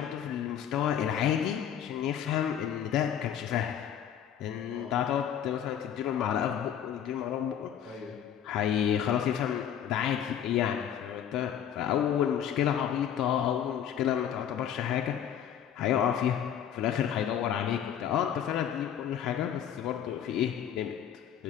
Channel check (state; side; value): quieter; right; 9.4 dB